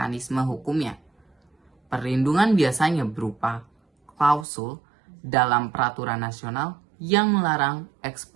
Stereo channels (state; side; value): drops out; left; at 4.5 s